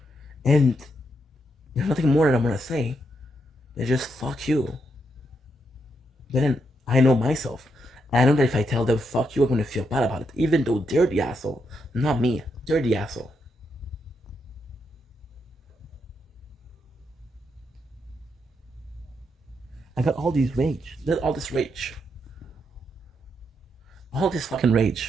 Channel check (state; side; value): normal; both; correlation 0.80